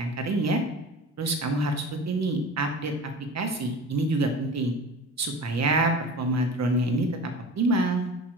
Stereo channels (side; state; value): both; normal; correlation 0.36